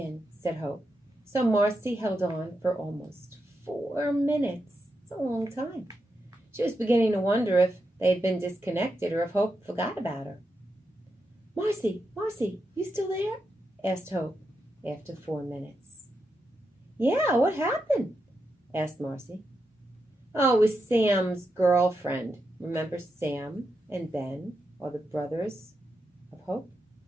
said Hope. So Marcy held on for almost 4 minutes. It's a long time. She was beginning to wonder if they had been disconnected or if Hope forgot about her. Marcy, you still there?" asked Hope after 4 minutes. "Yeah, what happened?" asked Marcy. "Oh, it was Sam's girlfriend. Remember Sam and Ben are the brothers of Hope?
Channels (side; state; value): both; normal; correlation 0.86